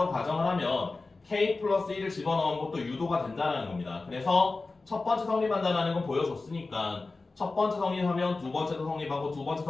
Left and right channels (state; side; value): quieter; right; 3.6 dB